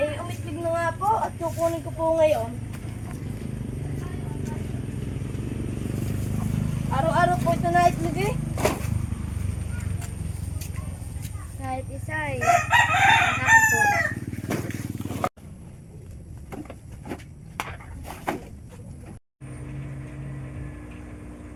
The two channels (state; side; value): identical; both; correlation 1.00